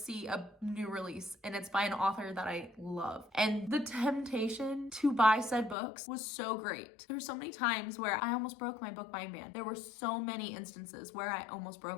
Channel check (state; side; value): drops out; right; at 5.8 s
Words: a new release, and it's by an author that I love. And the temptation to buy said books was so great. There were so many times where I almost broke my book buying ban. There were so many instances where I almost